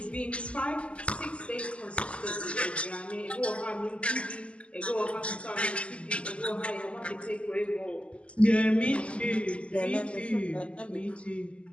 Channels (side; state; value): right; late; 0.057 ms